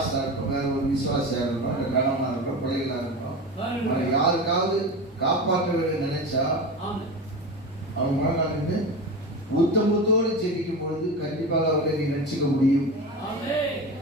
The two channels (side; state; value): both; normal; correlation 0.26